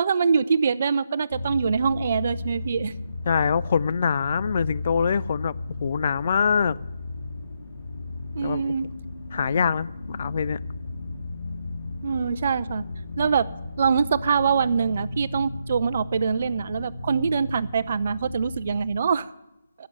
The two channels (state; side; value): inverted; both; correlation -0.79